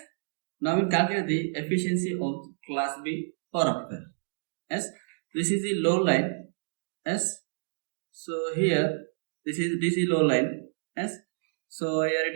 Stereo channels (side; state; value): left; silent; digital silence